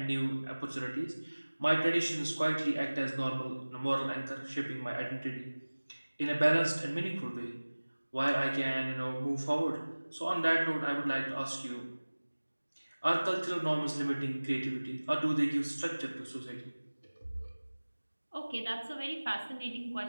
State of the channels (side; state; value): both; inverted; correlation -1.00